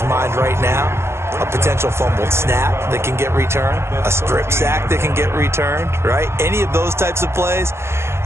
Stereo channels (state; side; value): late; left; 0.13 ms